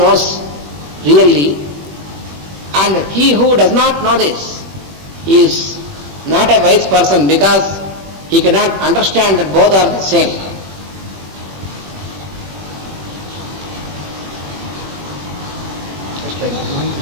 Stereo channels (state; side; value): late; left; 21 ms